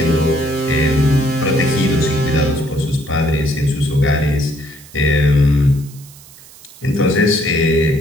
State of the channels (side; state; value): right; noise; hiss, 22 dB below the sound